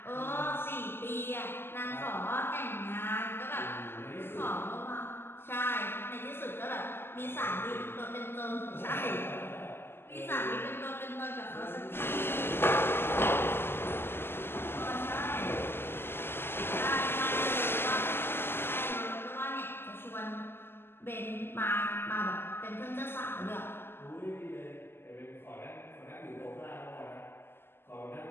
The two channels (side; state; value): right; late; 0.11 ms